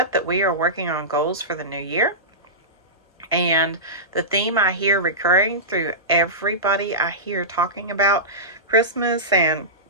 that we are working on goals for the new year. And the theme I hear recurring through everybody I hear talking about Christmas and,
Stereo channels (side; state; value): both; normal; correlation -0.17